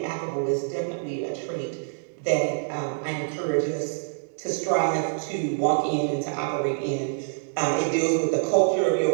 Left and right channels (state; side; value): silent; left; digital silence